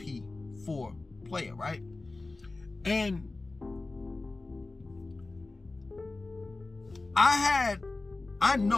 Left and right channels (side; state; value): right; quieter; 3.3 dB